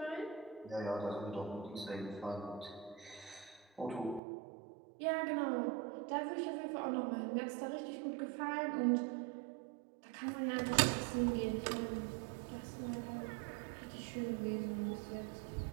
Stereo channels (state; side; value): drops out; left; at 4.2 s